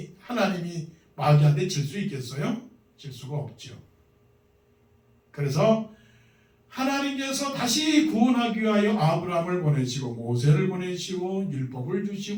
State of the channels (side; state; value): both; identical; correlation 1.00